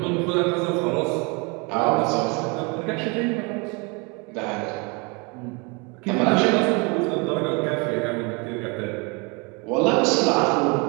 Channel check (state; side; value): quieter; left; 30.2 dB